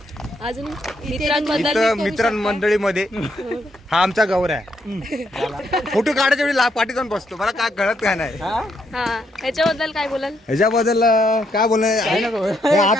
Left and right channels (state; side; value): normal; both; correlation 0.76